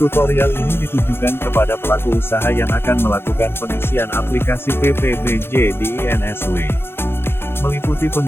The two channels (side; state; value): right; late; 0.11 ms